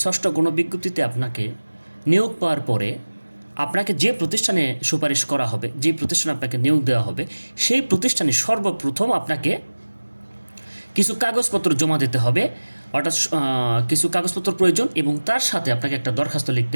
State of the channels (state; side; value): inverted; both; correlation -1.00